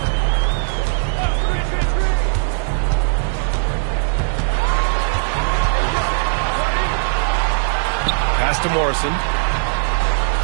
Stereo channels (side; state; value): left; silent; 64 dB below the other